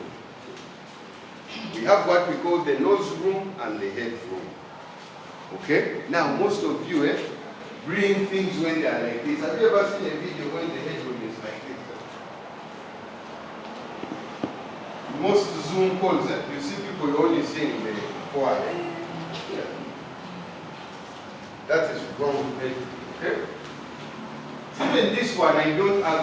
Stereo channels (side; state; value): both; identical; correlation 1.00